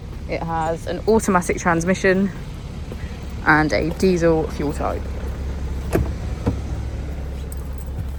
It has an automatic transmission and a diesel fuel type.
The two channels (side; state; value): both; identical; correlation 1.00